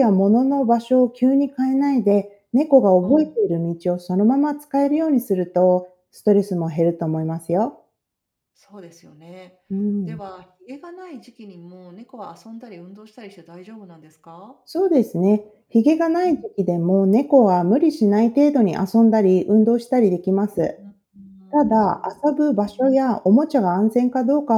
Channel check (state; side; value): identical; both; correlation 1.00